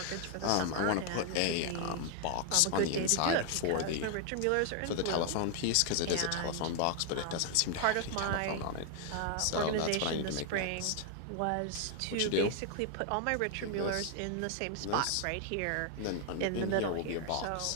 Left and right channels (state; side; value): different; both; correlation 0.00